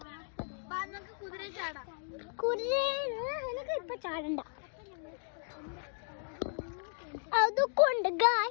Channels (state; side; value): silent; right; 54 dB below the other